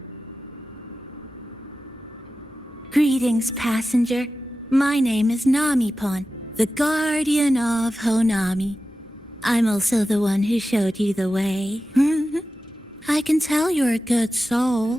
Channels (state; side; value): normal; both; correlation 0.94